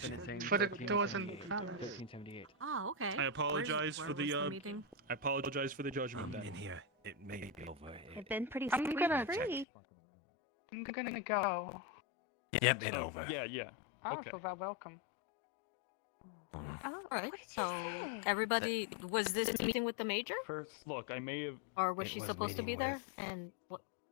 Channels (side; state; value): right; drops out; at 9.7 s